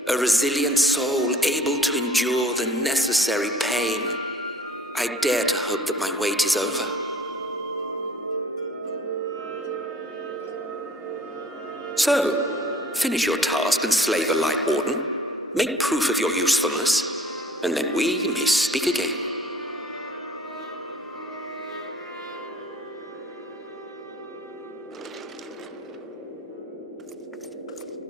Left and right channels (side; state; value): both; normal; correlation 0.50